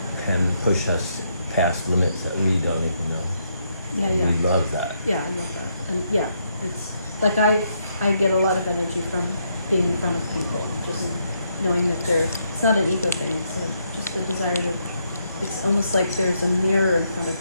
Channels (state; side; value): inverted; both; correlation -0.77